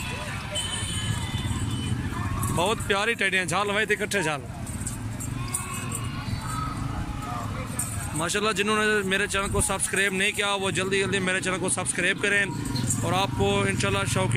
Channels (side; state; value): both; identical; correlation 1.00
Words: बहुत प्यारी टैडियाँ, झाल लवाई थी कट्ठे झाल। माशाल्लाह जिन्होंने मेरे चैनल को सब्सक्राइब नहीं किया वो जल्दी जल्दी मेरे चैनल को सब्सक्राइब करें। और आपको इंशाल्लाह